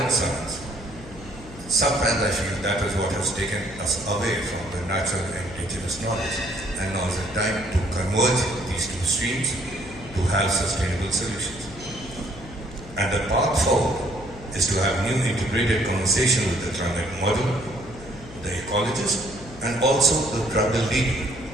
science, sometimes I feel that is what has taken us away from the natural and indigenous knowledge, and now is the time to converge these two streams to have sustainable solutions. And the path forward is to have new integrated conversation with the climate model, the ecologist, and also the tribal leader.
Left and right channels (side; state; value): left; noise; hum, 17 dB below the sound